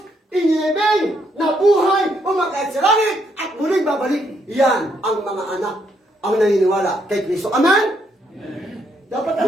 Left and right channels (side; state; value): both; normal; correlation 0.74